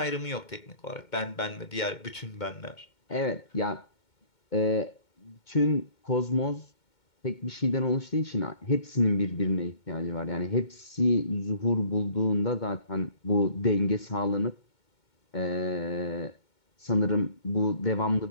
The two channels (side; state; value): right; late; 2.2 ms